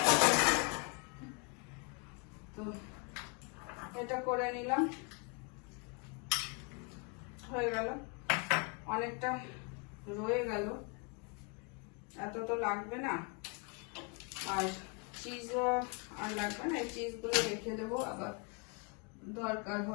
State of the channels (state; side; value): quieter; right; 33.7 dB